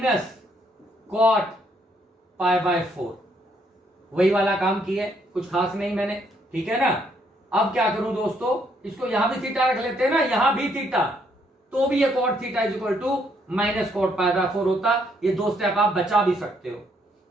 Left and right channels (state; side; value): normal; both; correlation 0.71